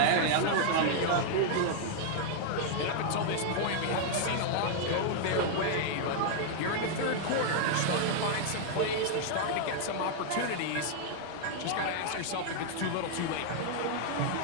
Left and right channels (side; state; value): both; different; correlation 0.00